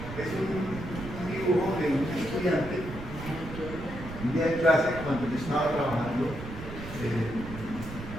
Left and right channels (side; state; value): right; noise; rumble, 10 dB below the sound